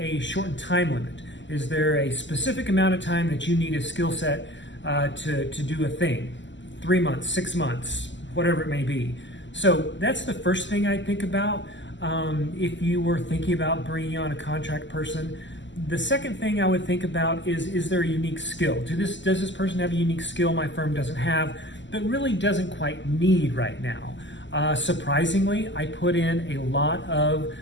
shortened time limit? Is there a specific amount of time that you need a skill set to do a thing? 3 months, 6 months, whatever it may be. So that's the first thing I think about if you were thinking about bringing on a contract person. The second thing I would think about is there a unique skill? Does this person have a unique skill my firm doesn't have, but really doesn't quite need right now? Surprisingly, I put in a lot of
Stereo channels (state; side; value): late; right; 0.54 ms